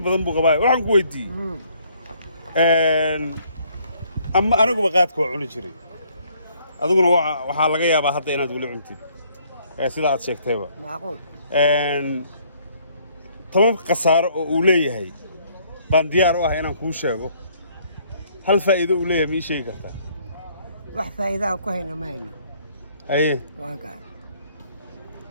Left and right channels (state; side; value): inverted; both; correlation -0.64